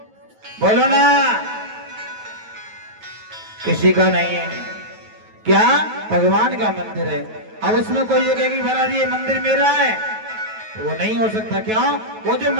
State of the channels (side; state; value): left; late; 9.3 ms